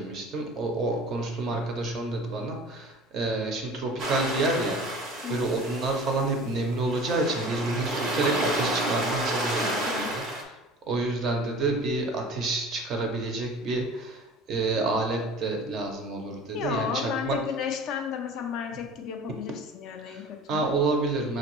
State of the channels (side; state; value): both; normal; correlation 0.42